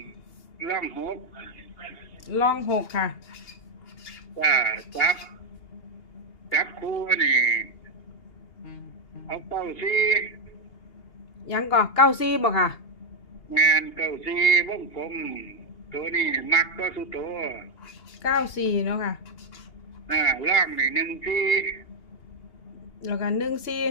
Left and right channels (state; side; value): late; right; 2.8 ms